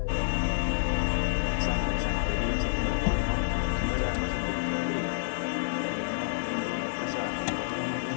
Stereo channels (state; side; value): silent; right; digital silence